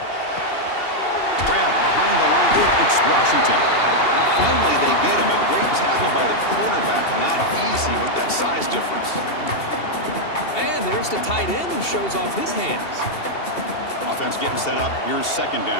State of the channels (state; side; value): late; right; 2.7 ms